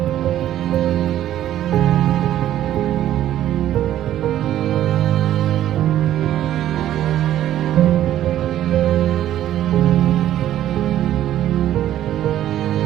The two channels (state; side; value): quieter; left; 12.2 dB